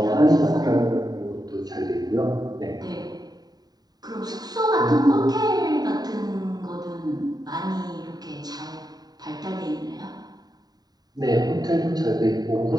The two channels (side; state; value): left; late; 0.19 ms